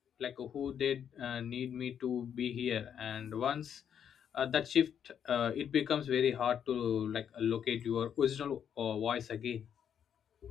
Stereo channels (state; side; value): quieter; right; 8.6 dB